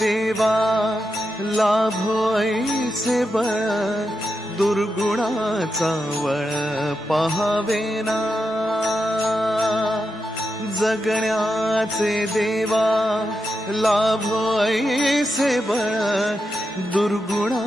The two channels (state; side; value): normal; both; correlation 0.87